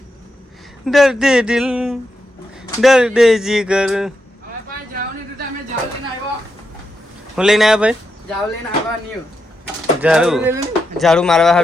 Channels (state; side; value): normal; both; correlation 0.85